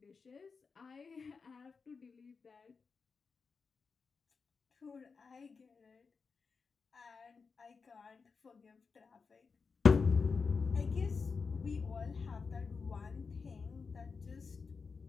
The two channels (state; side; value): quieter; right; 5.0 dB